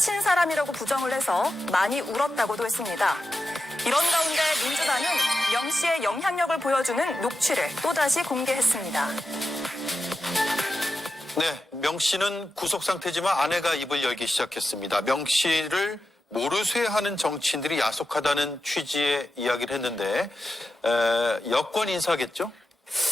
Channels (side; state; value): both; normal; correlation 0.90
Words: 사람이라고 부정을 해서 많이 울었다고도 했습니다. 이런 가운데 민주당은 명 씨의 영향력을 보여주는 녹취를 또다시 공개했습니다. 네, 명 씨는 구속 상태지만 아내가 입을 열기 시작했습니다. 명 씨를 모르쇠하는 정치인들이 야속하다는 취지의 이야기를 했는데 여권 인사겠죠?